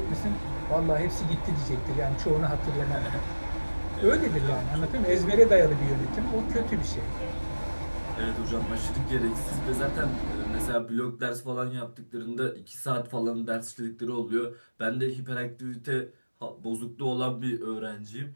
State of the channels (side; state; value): both; inverted; correlation -1.00